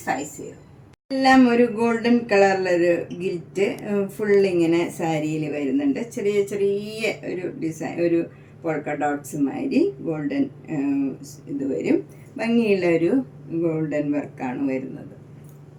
എല്ലാം ഒരു ഗോൾഡൻ കളറിലൊരു ഗിൽറ്റ് ഫുള്ളിങ്ങനെ സാരിയിൽ വരുന്നുണ്ട്. ചെറിയ ചെറിയ ഒരു ഡിസൈൻ, ഒരു പോൾക്ക ഡോട്ട്സ് മാതിരി ഗോൾഡൻ ഇത് വരും. ഭംഗിയുള്ള ഒരു ഗോൾഡൻ വർക്കാണ് വരുന്നത്.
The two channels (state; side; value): identical; both; correlation 1.00